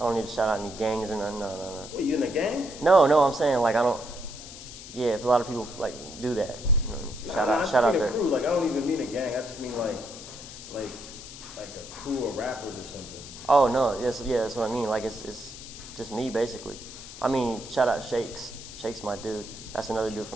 need to shout out any gangs or nothing. No. Wait, you in a gang? No, I'm saying like I don't. Yeah, if a lot of people like do that. You know, shout out there. Crew. Like I don't even mean a gang. I just mean like a crew of rappers or something. Oh no, that's what I mean. Like it's just me basically. I mean, shout out Shakes. Shakes my dude. That's another dude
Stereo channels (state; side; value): noise; left; hiss, 14 dB below the sound